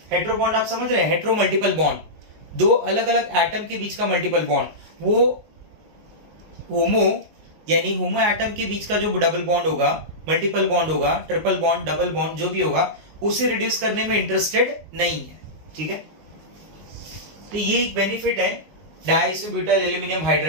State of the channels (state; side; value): late; left; 19 ms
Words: हेट्रो बॉन्ड आप समझ रहे हैं, हेट्रो मल्टीपल बॉन्ड, दो अलग अलग एटम के बीच का मल्टीपल बॉन्ड, वो होमो यानी होमो एटम के बीच का जो डबल बॉन्ड होगा, मल्टीपल बॉन्ड होगा, ट्रिपल बॉन्ड, डबल बॉन्ड जो भी होगा, उसे रिड्यूस करने में इंटरेस्टेड नहीं है। ठीक है, तो ये एक बेनिफिट है डाइसोब्यूटाइल एल्यूमिनियम